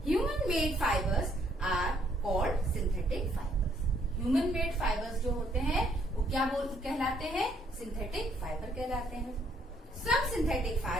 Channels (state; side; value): normal; both; correlation 0.68